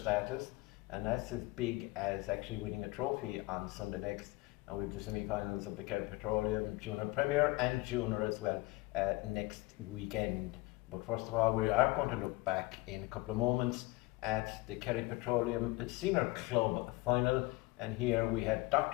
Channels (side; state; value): right; quieter; 21.8 dB